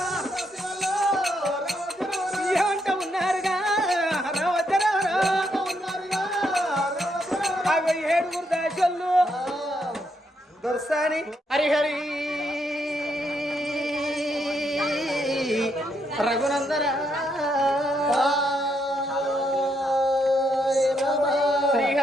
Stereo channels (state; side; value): normal; both; correlation 0.77